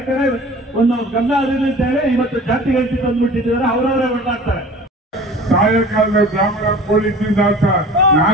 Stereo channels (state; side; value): normal; both; correlation 0.42